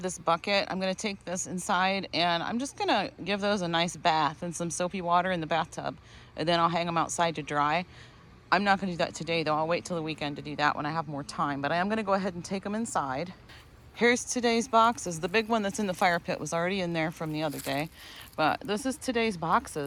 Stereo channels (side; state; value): both; identical; correlation 1.00